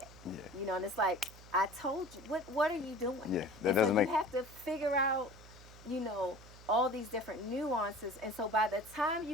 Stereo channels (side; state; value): right; noise; hum, 19 dB below the sound